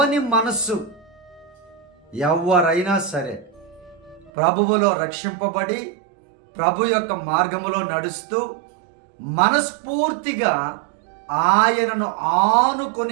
మనస్సు, ఎవరైనా సరే ప్రభువులో రక్షింపబడి ప్రభు యొక్క మార్గములో నడుస్తూ మనస్ఫూర్తిగా ఆయనను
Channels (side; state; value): left; drops out; at 4.3 s